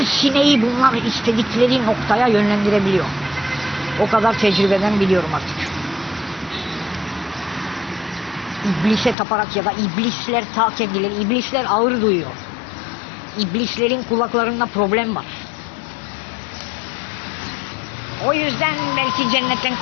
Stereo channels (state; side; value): drops out; right; at 9.2 s